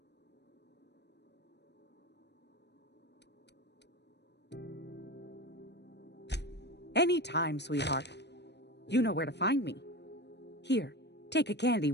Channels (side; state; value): right; late; 0.50 ms